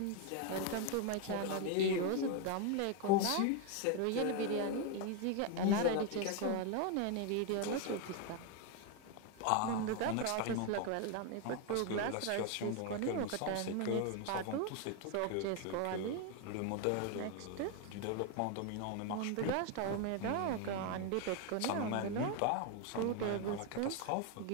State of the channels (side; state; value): both; different; correlation 0.01